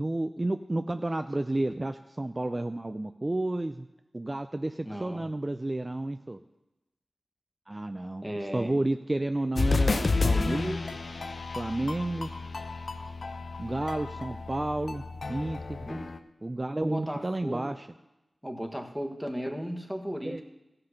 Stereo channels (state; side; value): normal; both; correlation 0.96